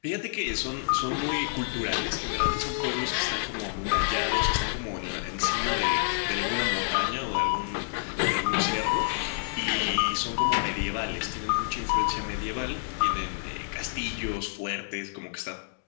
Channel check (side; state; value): right; silent; digital silence